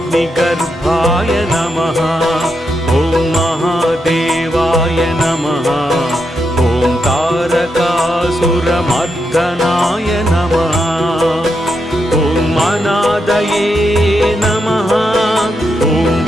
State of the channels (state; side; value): normal; both; correlation 0.83